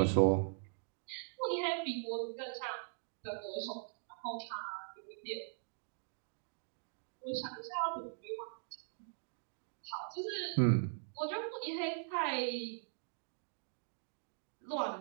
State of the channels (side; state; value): left; silent; digital silence